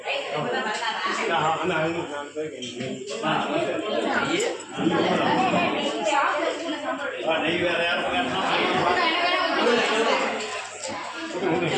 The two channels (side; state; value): both; identical; correlation 1.00